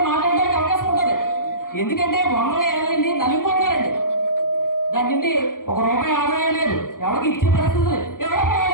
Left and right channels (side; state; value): right; late; 0.90 ms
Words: మాట్లాడడానికి అవకాశం ఉంటుంది. ఎందుకంటే 100 ఏళ్ళండి నలిగిపోతున్నారండి. దాని నుండి ₹1 ఆదాయం లేదు, ఎవరికి ఇచ్చే పరిస్థితి లేదు. ఎవరో